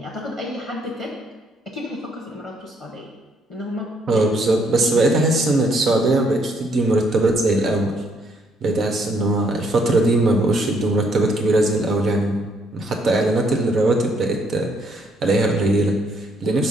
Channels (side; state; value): both; normal; correlation 0.70